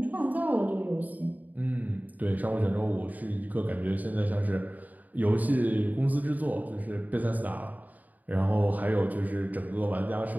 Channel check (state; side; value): late; left; 0.080 ms